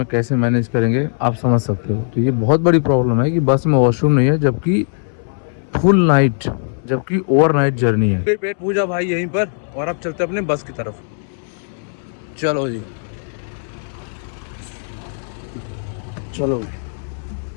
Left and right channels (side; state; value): right; silent; 67 dB below the other